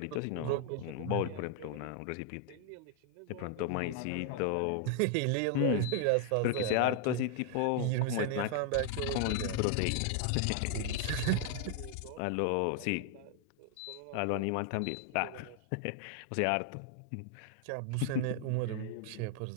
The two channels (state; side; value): different; both; correlation 0.00